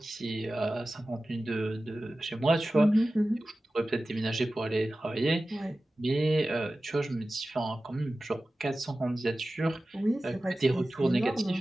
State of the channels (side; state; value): both; normal; correlation 0.95